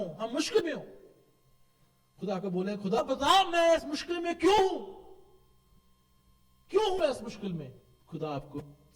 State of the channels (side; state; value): both; identical; correlation 1.00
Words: हम मुश्किल में हो, खुदा को बोले खुदा बता मैं इस मुश्किल में क्यों हूं इस मुश्किल में, खुदा आपको